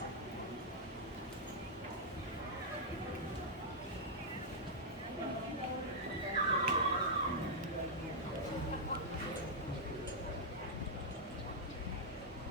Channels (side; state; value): both; normal; correlation -0.06